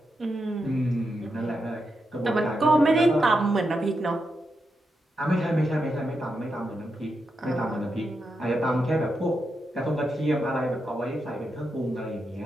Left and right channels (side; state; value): both; normal; correlation 0.85